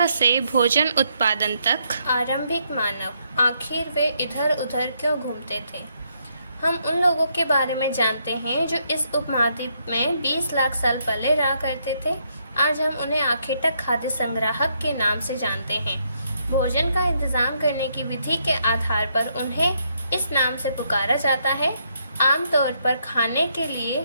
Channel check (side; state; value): both; inverted; correlation -0.75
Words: से भोजन उत्पादन तक। आरंभिक मानव आखिर वे इधर उधर क्यों घूमते थे। हम उन लोगों के बारे में जानते हैं जो इस उपमहाद्वीप में 20 लाख साल पहले रहा करते थे। आज हम उन्हें आखेटक खाद्य संग्राहक के नाम से जानते हैं। भोजन का इंतजाम करने की विधि के आधार पर उन्हें इस नाम से पुकारा जाता है। आमतौर पर खाने के लिए